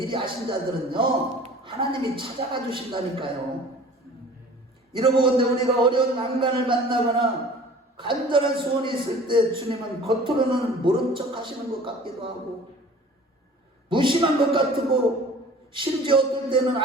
아신 자들은요 하나님이 찾아가 주신다니까요. 이러고건대 우리가 어려운 난간을 만나거나 간절한 소원이 있을 때 주님은 겉으로는 모른 척 하시는 것 같기도 하고 무심한 것 같고 심지어 어떨 때는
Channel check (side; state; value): both; normal; correlation 0.46